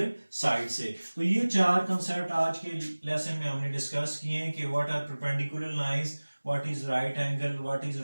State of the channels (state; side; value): inverted; both; correlation -1.00